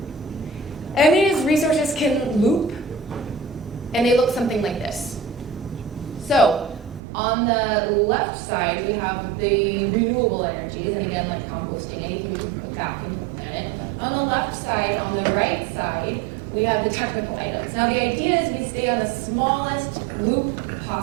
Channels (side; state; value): left; drops out; at 7.0 s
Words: And these resources can loop, and they look something like this. So, on the left side, we have the renewable energies, and again, like composting, anything we can put back into the planet. On the left side, on the right side, we have the technical items. Now, the idea is we stay on the smallest loop